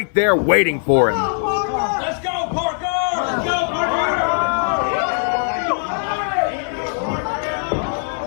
there waiting for him. Let's go, Parker! Let's go, Parker!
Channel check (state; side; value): silent; right; 60 dB below the other